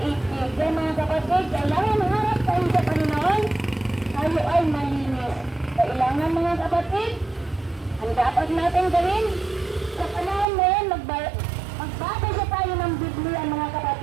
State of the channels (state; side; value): drops out; left; at 10.5 s